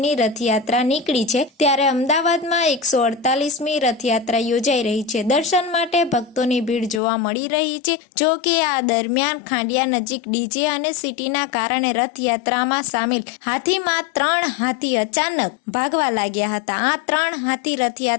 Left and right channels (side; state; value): right; drops out; at 7.0 s